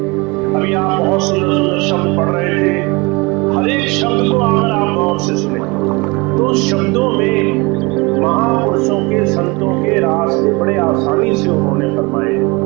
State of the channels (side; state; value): left; quieter; 26.2 dB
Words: अभी आप बहुत सुंदर सुंदर शब्द पढ़ रहे थे, हर एक शब्द को अगर आप गौर से सुने तो शब्दों में महापुरुषों के संतों के रास्ते बड़े आसानी से उन्होंने फरमाए,